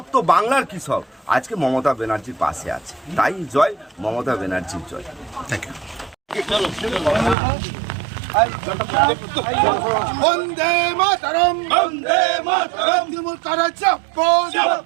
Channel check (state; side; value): drops out; left; at 7.4 s